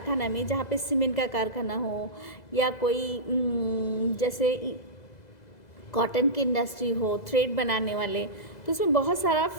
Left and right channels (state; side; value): late; right; 2.0 ms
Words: में, जहाँ पे सीमेंट का कारखाना हो, या कोई जैसे कॉटन की इंडस्ट्री हो, थ्रेड बनाने वाले, तो उसमें बहुत सारा